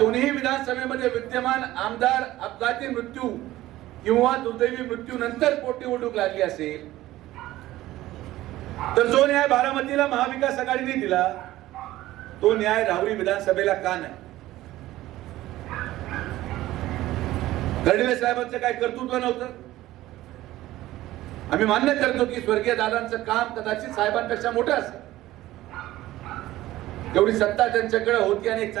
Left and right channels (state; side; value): quieter; left; 15.9 dB